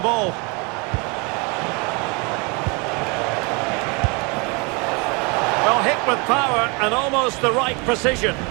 ball. Well, hit with power and almost the right precision.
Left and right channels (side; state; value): left; quieter; 30.1 dB